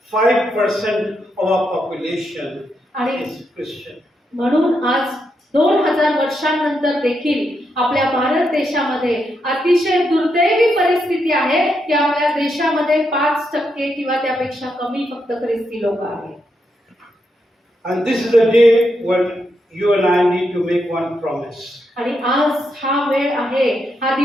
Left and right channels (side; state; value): both; normal; correlation 0.82